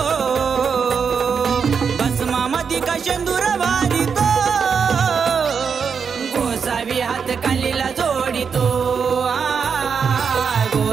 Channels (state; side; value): quieter; left; 6.2 dB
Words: भस्मामधी का शेंदूर भारी तो गोसावी हात कालीला जोडितो